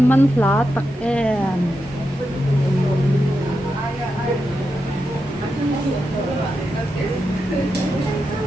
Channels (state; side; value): normal; both; correlation 0.87